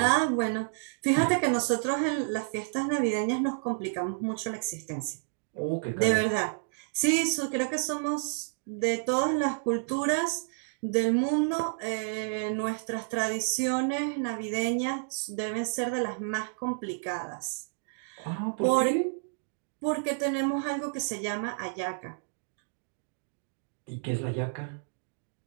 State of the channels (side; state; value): left; silent; digital silence